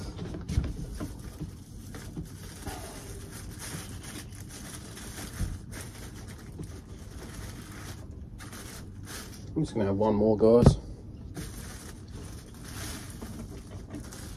I'm just going to have one more, guys.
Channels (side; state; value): both; identical; correlation 1.00